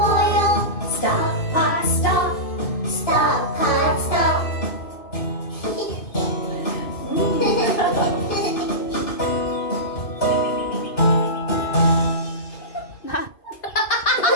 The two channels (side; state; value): right; late; 2.5 ms